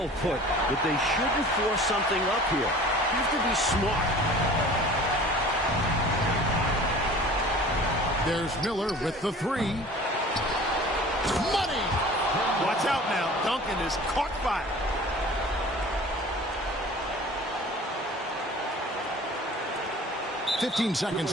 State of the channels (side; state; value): both; normal; correlation 0.44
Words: put. But they shouldn't force something up here. You have to be smart. There's Miller with the 3. Money! Watch out now. Duncan is caught fire. .15